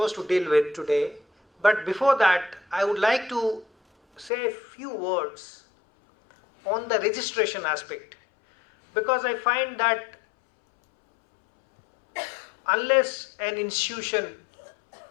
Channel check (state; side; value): drops out; right; at 4.3 s